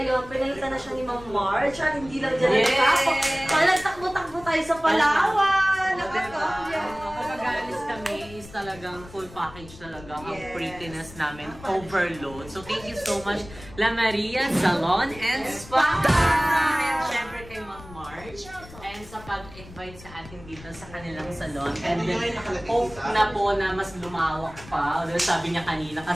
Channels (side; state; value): left; noise; rumble, 18 dB below the sound